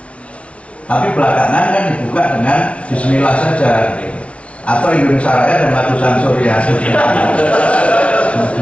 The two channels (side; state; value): right; late; 0.062 ms